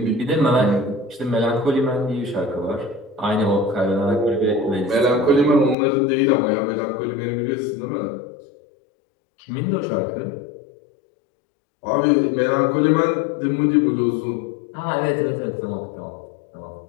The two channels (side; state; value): right; drops out; at 5.8 s